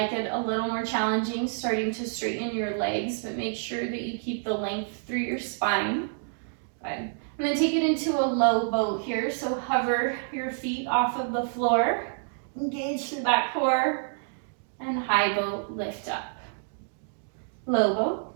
it a little more challenging, starting to straighten your legs, but make sure that you keep the length through your spine. Good. And then take it into a low boat here. So hover your feet off of the floor, engage through that core, and high boat, lift up. Low boat,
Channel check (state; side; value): silent; left; digital silence